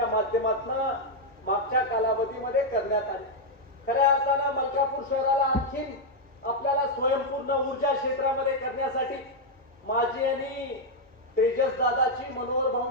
माध्यमातून मागच्या कालावधीमध्ये करण्यात आली. खऱ्या अर्थानं मलकापूर शहराला आणखीन आपल्याला स्वयंपूर्ण ऊर्जा क्षेत्रामध्ये करण्यासाठी माझी आणि तेजस दादाची, मनोहर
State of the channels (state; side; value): normal; both; correlation -0.01